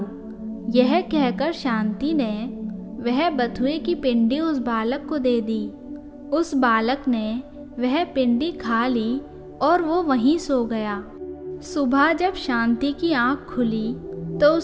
यह कहकर शांति ने वह बथुए की पिंडी उस बालक को दे दी। उस बालक ने वह पिंडी खा ली और वो वहीं सो गया। सुबह जब शांति की आंख खुली तो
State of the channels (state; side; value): identical; both; correlation 1.00